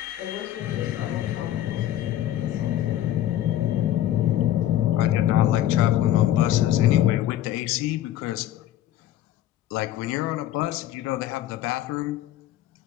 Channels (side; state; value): right; quieter; 12.6 dB